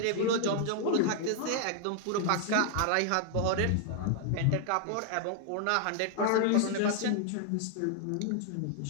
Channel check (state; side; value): different; both; correlation 0.00